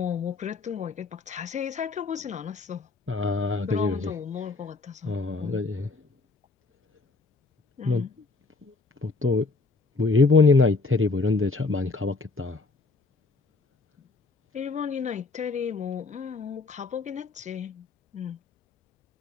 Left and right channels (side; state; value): right; quieter; 3.9 dB